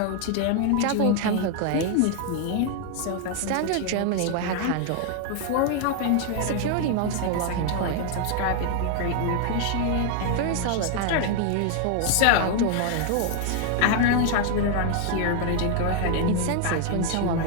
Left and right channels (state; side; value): different; both; correlation 0.00